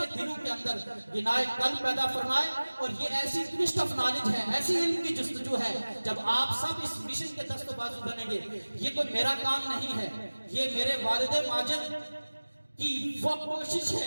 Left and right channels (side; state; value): both; inverted; correlation -1.00